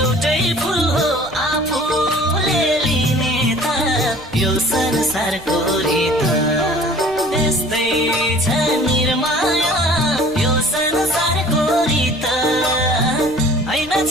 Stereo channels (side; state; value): right; noise; rumble, 21 dB below the sound